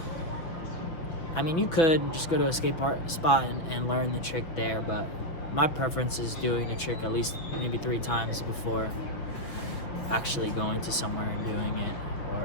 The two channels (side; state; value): right; late; 6.1 ms